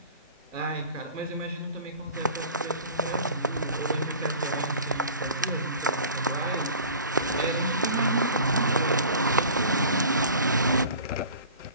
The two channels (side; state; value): both; inverted; correlation -0.42